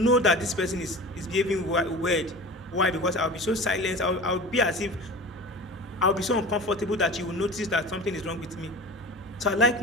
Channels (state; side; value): normal; both; correlation 0.35